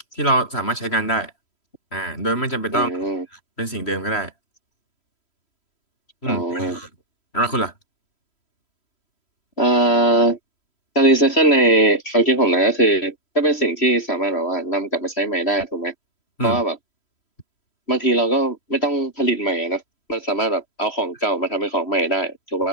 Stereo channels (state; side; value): late; right; 3.1 ms